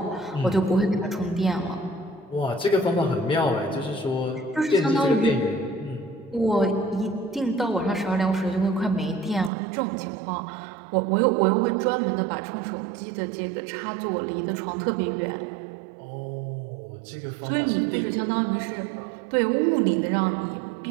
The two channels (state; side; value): drops out; left; at 9.5 s